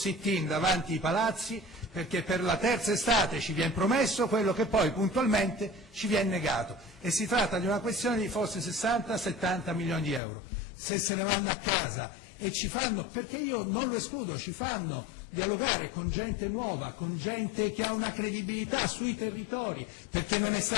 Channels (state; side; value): drops out; right; at 10.2 s